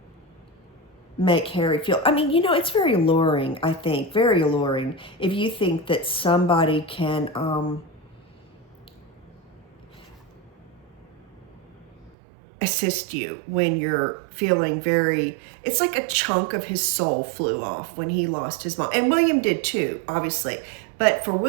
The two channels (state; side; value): drops out; left; at 12.1 s